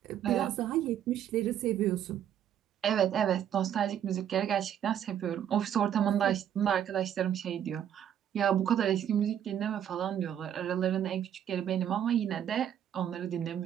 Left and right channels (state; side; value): quieter; left; 9.9 dB